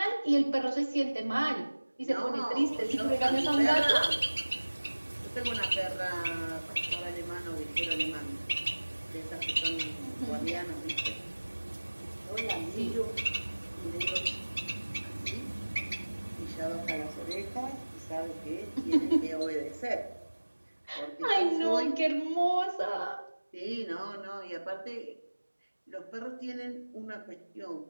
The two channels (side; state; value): both; inverted; correlation -1.00